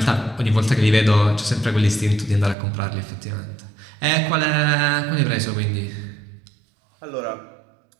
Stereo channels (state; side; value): drops out; left; at 2.6 s